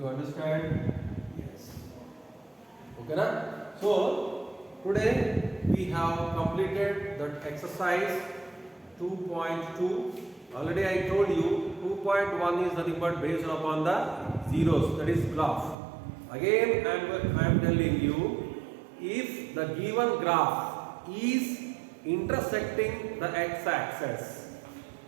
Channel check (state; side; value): drops out; left; at 15.8 s